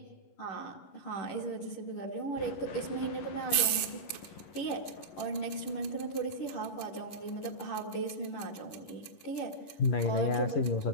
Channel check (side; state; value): right; late; 10 ms